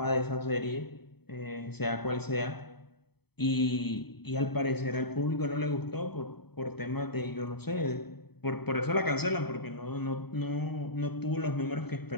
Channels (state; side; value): late; right; 0.97 ms